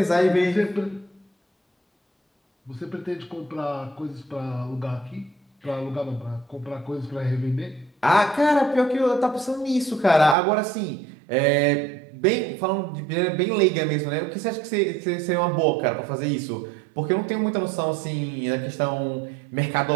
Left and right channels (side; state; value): left; drops out; at 10.4 s